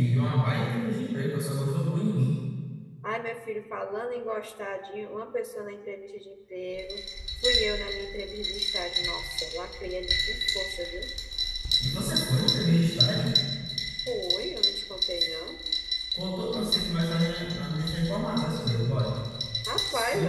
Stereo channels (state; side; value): identical; both; correlation 1.00